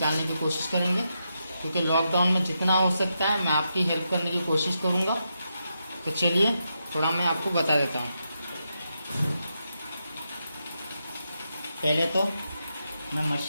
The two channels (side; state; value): both; inverted; correlation -0.85